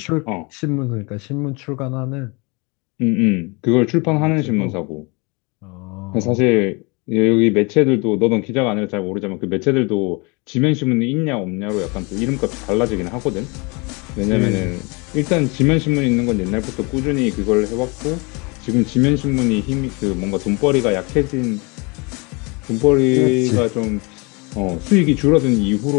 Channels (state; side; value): quieter; right; 28.9 dB